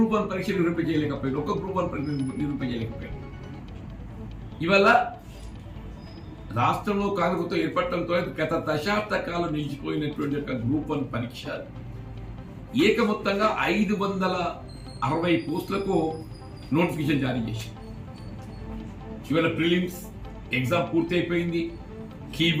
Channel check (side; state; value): both; identical; correlation 1.00